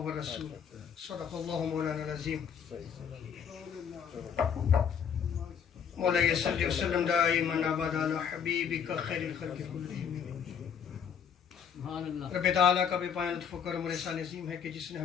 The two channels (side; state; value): right; quieter; 7.6 dB